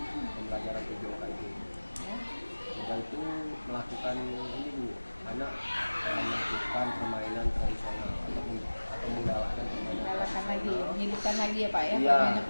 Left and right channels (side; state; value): both; inverted; correlation -1.00